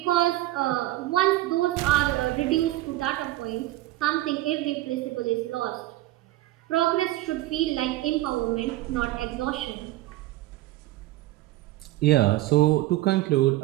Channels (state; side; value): quieter; left; 16.8 dB